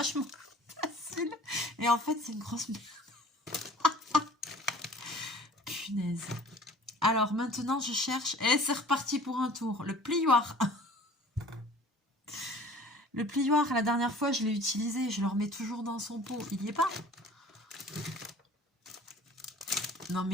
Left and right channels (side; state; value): both; normal; correlation 0.48